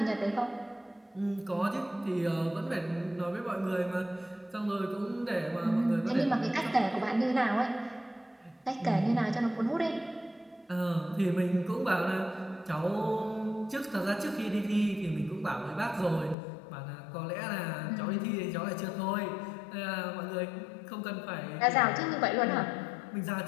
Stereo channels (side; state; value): right; drops out; at 16.4 s